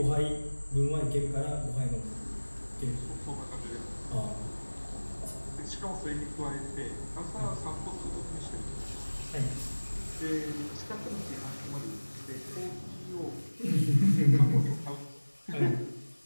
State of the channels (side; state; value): both; inverted; correlation -1.00